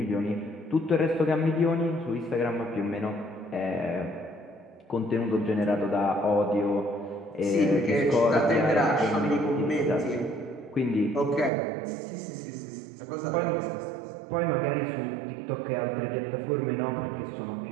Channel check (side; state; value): left; drops out; at 11.5 s